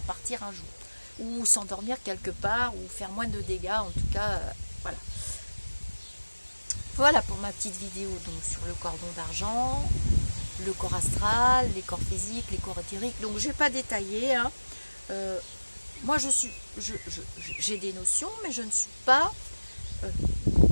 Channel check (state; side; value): inverted; both; correlation -1.00